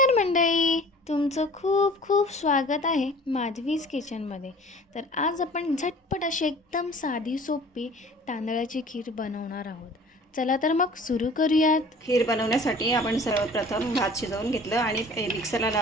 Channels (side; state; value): both; normal; correlation 0.47